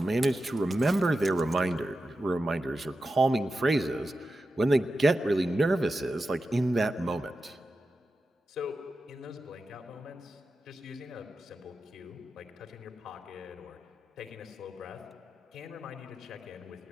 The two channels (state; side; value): normal; both; correlation 0.91